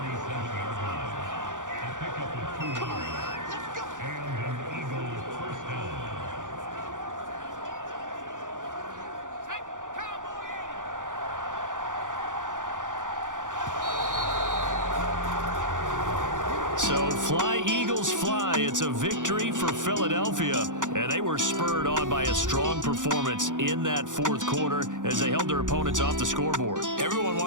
So fly, Eagles, fly. It's a victory for Philadelphia. And they were spurred on by a strong performance in that fourth quarter as they held their opponents off the scoreboard. Everyone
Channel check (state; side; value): late; left; 0.87 ms